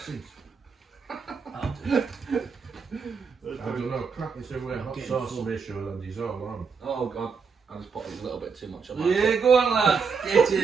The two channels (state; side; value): quieter; left; 5.6 dB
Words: seems. I'll do it. I don't know. Crap is everywhere. Hot Getting sauce full. ratio and he's all on. Oh god, I just put a little bit too much on. Yeah, go on, lad. Get